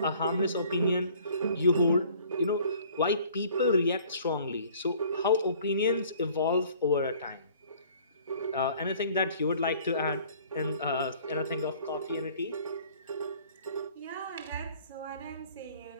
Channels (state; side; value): inverted; both; correlation -0.54